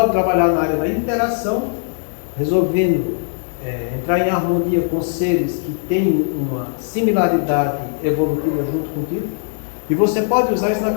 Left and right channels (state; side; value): silent; right; digital silence